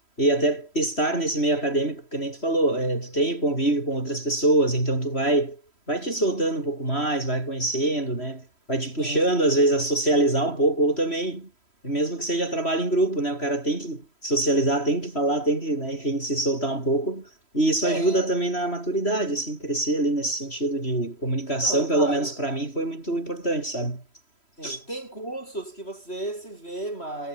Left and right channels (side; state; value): right; late; 3.1 ms